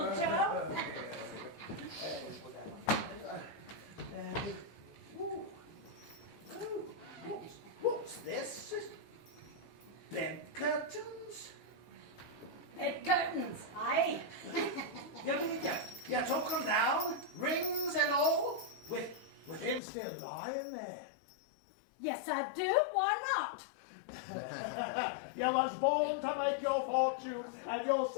Joe. What's this? Bed curtains? Bed curtains, aye. You took them down, rings and all, with him still lying there. Yes, I do. Why not? You was born to make your fortune, and you'll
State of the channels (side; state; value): right; drops out; at 19.8 s